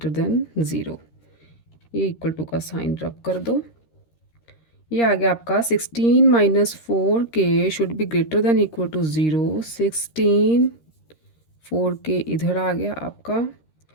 than zero, ये इक्वल टू का साइन रब कर दो। ये आ गया आपका 16 minus 4k should be greater than equal to zero. 16 4k इधर आ गया आपका,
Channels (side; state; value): right; late; 13 ms